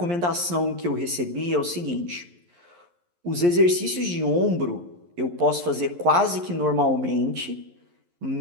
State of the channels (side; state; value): left; late; 11 ms